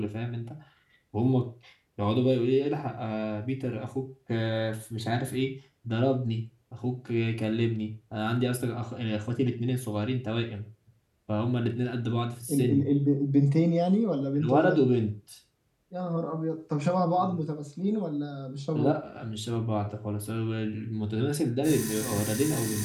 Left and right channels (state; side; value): identical; both; correlation 1.00